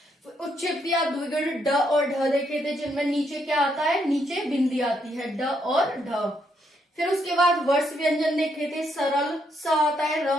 उच्छिप्त या द्विगुण ड और ढ देखे थे, जिनमें नीचे क्या आता है, नीचे बिंदी आती है, ड और ढ। फिर उसके बाद वर्ष व्यंजन देखे थे, सरल, स आता है, र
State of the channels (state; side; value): normal; both; correlation 0.75